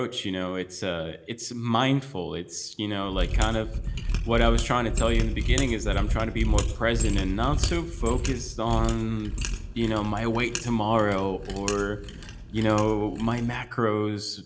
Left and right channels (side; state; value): both; identical; correlation 1.00